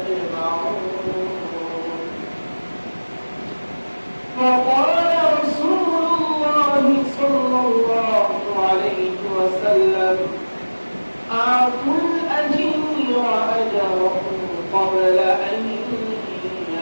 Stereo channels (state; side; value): inverted; both; correlation -1.00